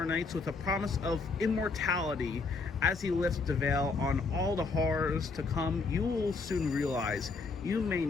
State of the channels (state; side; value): quieter; right; 4.2 dB